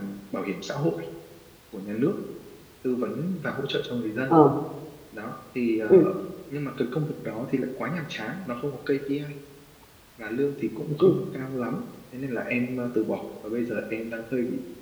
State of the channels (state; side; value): identical; both; correlation 1.00